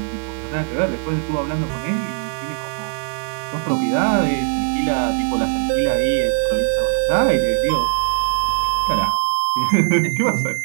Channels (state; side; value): silent; left; 60 dB below the other